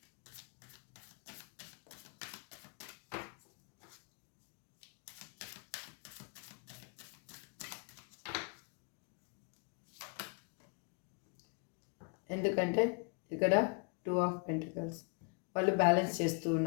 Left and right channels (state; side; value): quieter; right; 36.7 dB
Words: ఎందుకంటే ఇక్కడ 2 ఆఫ్ పెంటికల్స్. వాళ్ళు బ్యాలెన్స్ చేస్తూ